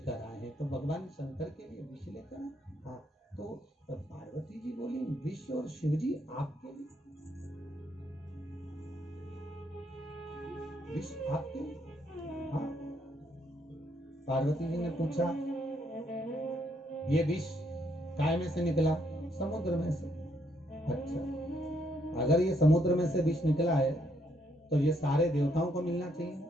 आए हैं। तो भगवान शंकर के लिए विष लेकर आए। हाँ, तो पार्वती जी बोली विष और शिव जी आपके लिए, विष आपके लिए? हाँ। पार्वती जी ने पूछा ये विष काय में से निकला? समुद्र में से। अच्छा, अगर ये समुद्र में से विष निकला है तो ये सारे देवताओं को मिलना चाहिए,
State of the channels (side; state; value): both; normal; correlation 0.73